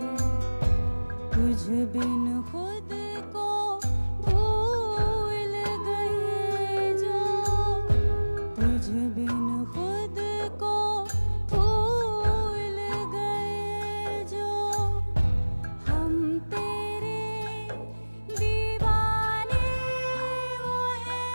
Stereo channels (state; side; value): inverted; both; correlation -1.00